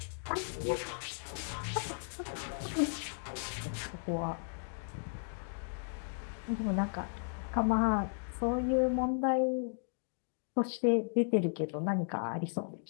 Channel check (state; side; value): silent; right; digital silence